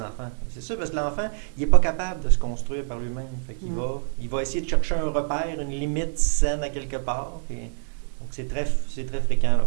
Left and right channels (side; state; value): left; silent; digital silence